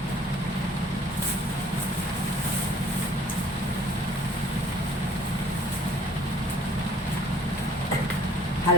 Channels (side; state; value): both; normal; correlation 0.54